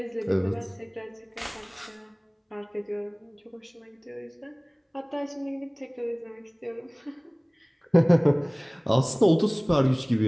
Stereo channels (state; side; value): identical; both; correlation 1.00